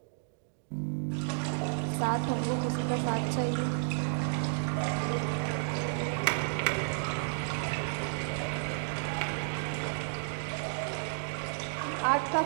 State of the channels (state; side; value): silent; left; digital silence